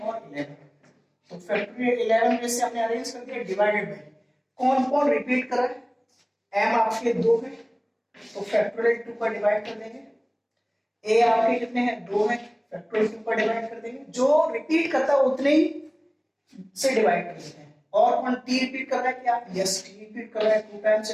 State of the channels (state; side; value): identical; both; correlation 1.00